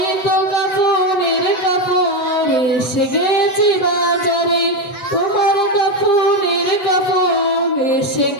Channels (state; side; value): late; right; 8.0 ms